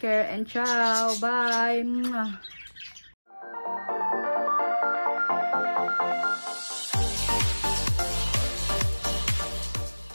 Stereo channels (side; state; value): both; inverted; correlation -1.00